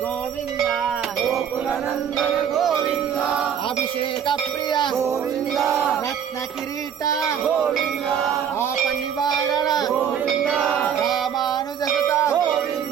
గోవింద గోకుల నందన గోవింద అభిషేక ప్రియ గోవింద రత్న కిరీట గోవింద ఆప నివారణ గోవింద రామానుజసుత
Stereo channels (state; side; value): quieter; left; 8.3 dB